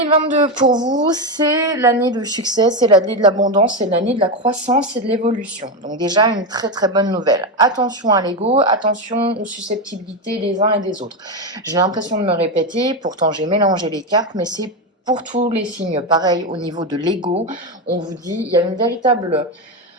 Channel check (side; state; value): both; normal; correlation 0.11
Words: pour vous, c'est l'année du succès, c'est l'année de l'abondance, c'est l'année de la croissance et de l'évolution. Donc déjà une très très bonne nouvelle. Attention à l'ego, attention aux susceptibilités des uns et des autres. J'ai l'impression de me répéter, pourtant j'ai mélangé les cartes, mais c'est pour tous les signes. Pareil au niveau de l'ego, on vous dit il y a